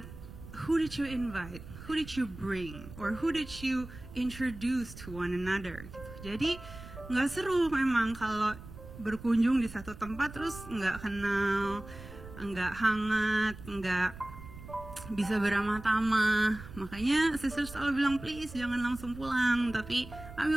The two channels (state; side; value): noise; right; rumble, 15 dB below the sound